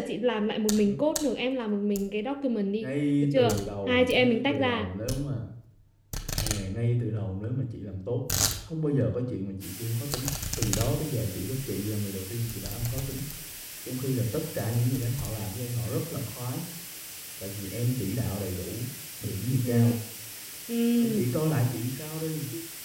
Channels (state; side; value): identical; both; correlation 1.00